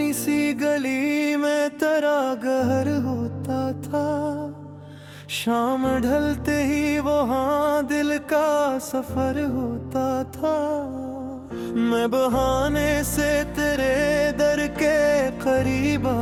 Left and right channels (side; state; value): both; identical; correlation 1.00